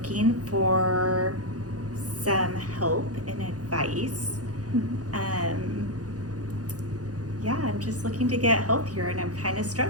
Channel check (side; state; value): left; late; 0.68 ms